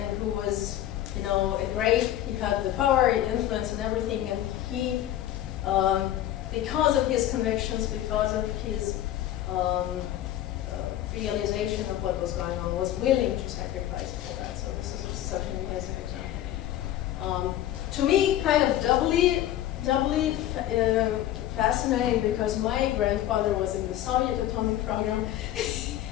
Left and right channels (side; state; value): right; quieter; 12.8 dB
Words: who was, he had the power, influence, and everything, and he, because of his convictions, because of his realization of what was going on, was willing to sacrifice for that. So this is such an amazing example. To me, kind of doubly fascinating, because my grandfather was in the Soviet atomic program